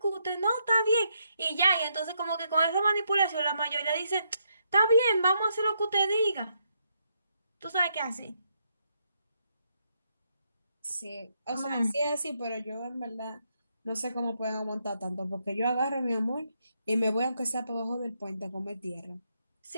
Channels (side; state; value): both; inverted; correlation -0.77